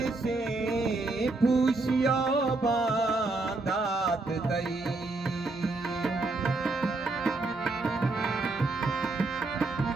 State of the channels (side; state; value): left; quieter; 3.3 dB